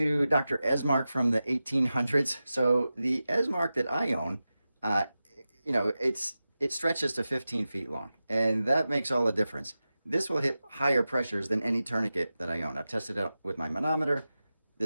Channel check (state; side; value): inverted; both; correlation -0.94